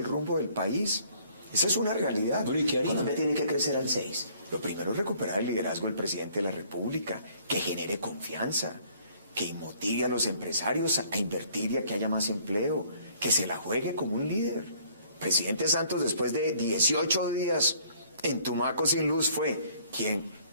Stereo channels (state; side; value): inverted; both; correlation -0.60